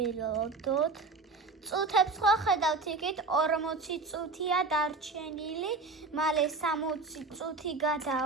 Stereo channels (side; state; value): left; quieter; 3.7 dB